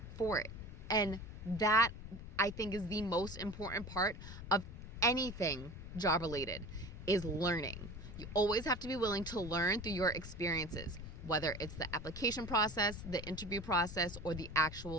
for it. And that, I think, is the most important part of anything job related, is learning. You always have to be willing to learn through your experiences, whether it's the application process, the interview process, or the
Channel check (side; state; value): left; noise; rumble, 10 dB below the sound